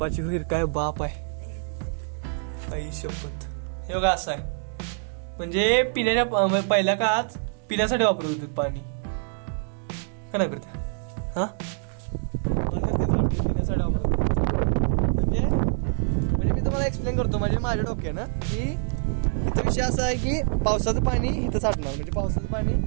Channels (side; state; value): left; silent; 56 dB below the other